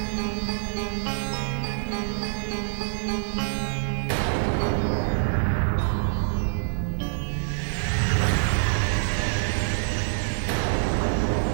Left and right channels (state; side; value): silent; left; 61 dB below the other